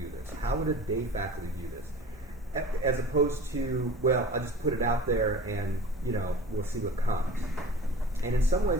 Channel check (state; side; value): normal; both; correlation 0.40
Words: this? How would a day faculty view this? As opposed to, well, I'll just put it out there and, we'll see what comes. And in some